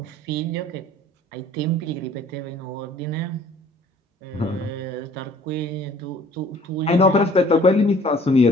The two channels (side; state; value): both; normal; correlation 0.54